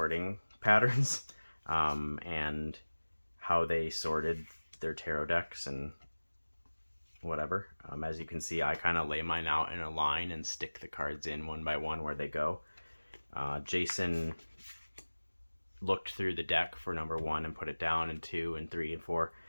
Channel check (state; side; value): inverted; both; correlation -1.00